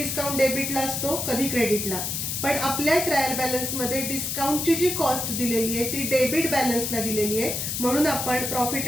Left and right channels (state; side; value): noise; left; hiss, 2 dB below the sound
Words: डेबिटला असतो, कधी क्रेडिटला. पण आपल्या ट्रायल बॅलन्स मध्ये डिस्काउंटची जी कॉस्ट दिलेली आहे ती डेबिट बॅलन्सला दिलेली आहे. म्हणून आपण प्रॉफिट